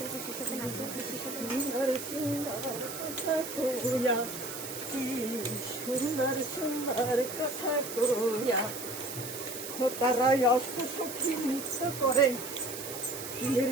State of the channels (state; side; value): noise; right; hiss, 8 dB below the sound